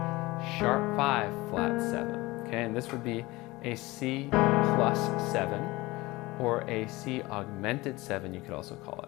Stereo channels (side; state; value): right; quieter; 21.0 dB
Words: sharp 5, flat 7. Okay, and this would be a C plus 7 or a C augmented 7, you could also call